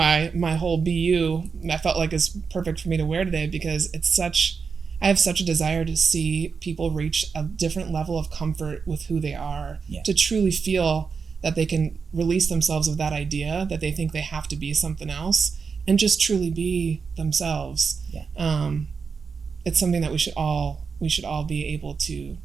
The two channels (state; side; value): quieter; left; 5.5 dB